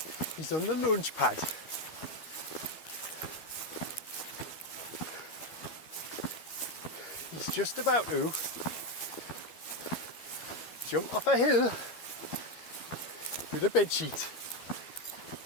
is on the launch pad. He's just about to jump off a hill with a bedsheet.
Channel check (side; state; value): right; late; 12 ms